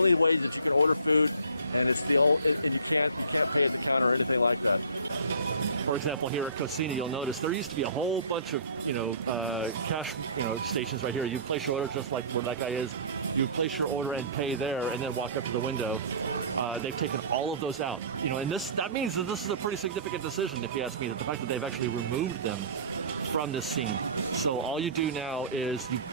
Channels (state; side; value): inverted; both; correlation -0.45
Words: way that you can order food, and and you can't pay at the counter or anything like that. For example, here at Cocina, you'll notice there used to be a whole bunch of cash stations right here. You place your order just like where that guy is. You place your order and pay there, and then walk up to the window. They've taken all of those out. And that means that this is a pretty significant decision, if you ask me. The fact that they've actually removed them from the scene. So all you do now is you